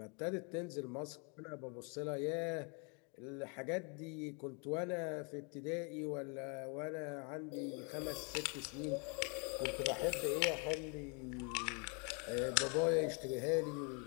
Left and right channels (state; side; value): quieter; right; 35.4 dB